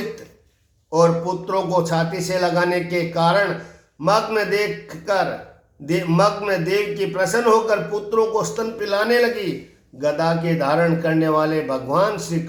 और पुत्रों को छाती से लगाने के कारण मग्न देव की प्रसन्न होकर पुत्रों को स्तन पिलाने लगी। गदा के धारण करने वाले भगवान श्री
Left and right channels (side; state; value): both; identical; correlation 1.00